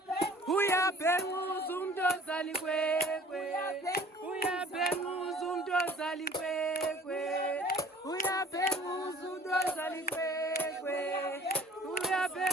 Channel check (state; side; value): normal; both; correlation 0.50